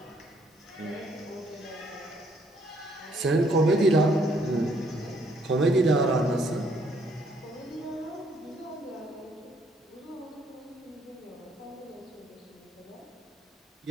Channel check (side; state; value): both; normal; correlation 0.68